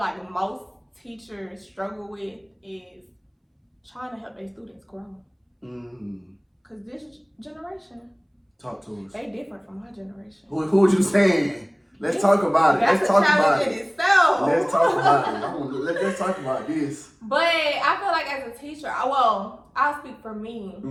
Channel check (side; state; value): both; identical; correlation 1.00